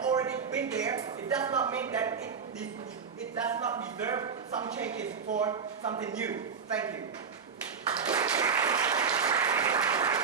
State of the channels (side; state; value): left; quieter; 6.1 dB